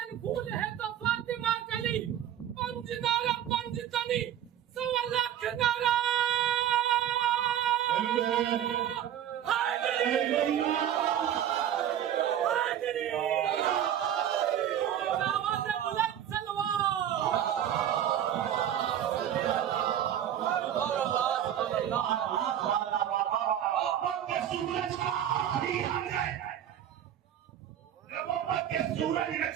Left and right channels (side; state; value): left; quieter; 10.5 dB